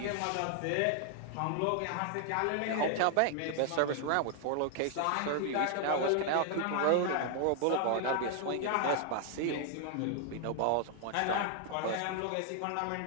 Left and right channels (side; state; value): both; different; correlation 0.00